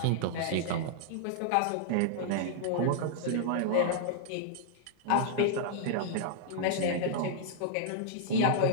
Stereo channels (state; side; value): different; both; correlation -0.01